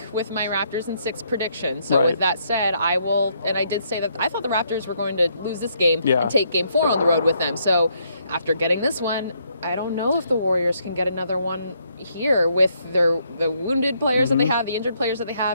with my Raptors in 6 prediction. So with that said, I will, and I did say that I thought the Raptors were going to lose this game and take game 4 on the road with them. So after getting this one, I don't know if the Warriors can get another one here with the wounded players that they have, the injured players that they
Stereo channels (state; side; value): inverted; both; correlation -0.72